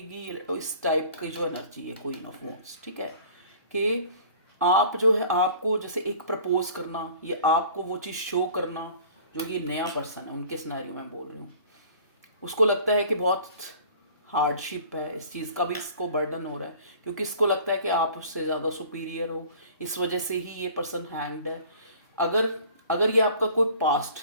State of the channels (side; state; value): both; inverted; correlation -0.48